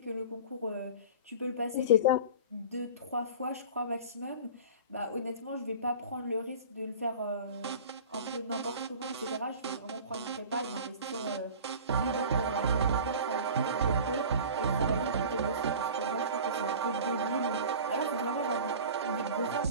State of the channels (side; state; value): both; inverted; correlation -0.38